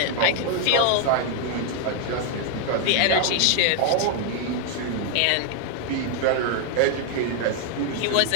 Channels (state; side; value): different; both; correlation 0.00